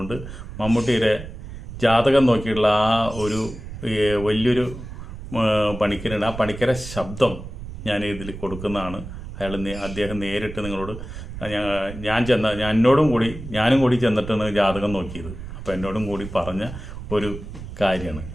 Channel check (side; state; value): right; noise; rumble, 11 dB below the sound